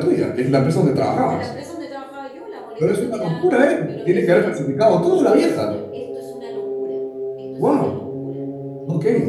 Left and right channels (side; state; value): both; identical; correlation 1.00